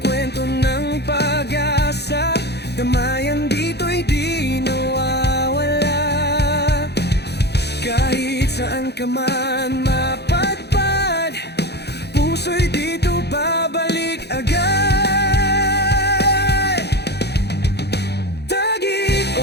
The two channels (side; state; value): right; late; 0.48 ms